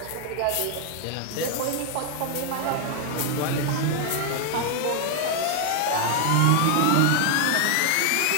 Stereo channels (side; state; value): both; different; correlation 0.00